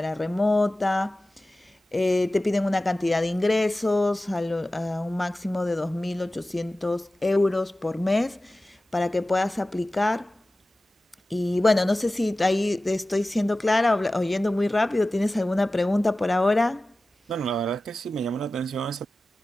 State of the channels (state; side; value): normal; both; correlation 0.96